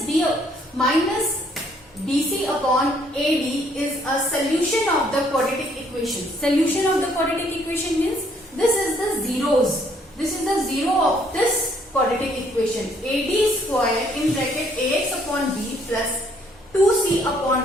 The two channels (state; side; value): normal; both; correlation 0.66